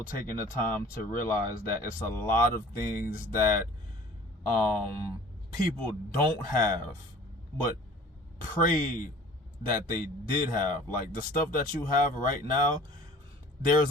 taking the time to realize that it's a lot of things that people don't have, but pray that they did have. Like the stuff that you have right now,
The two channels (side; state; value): both; normal; correlation 0.48